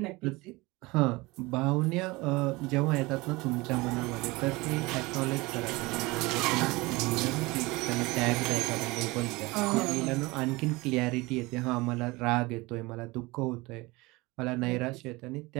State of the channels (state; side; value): quieter; left; 22.8 dB